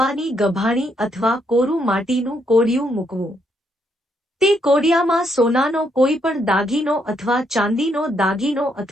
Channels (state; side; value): normal; both; correlation 0.75